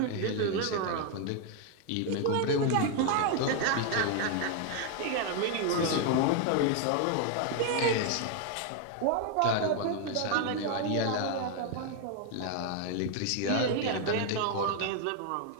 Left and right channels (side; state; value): both; different; correlation 0.01